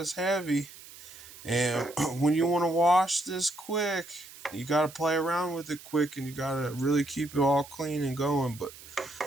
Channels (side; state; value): right; noise; hiss, 18 dB below the sound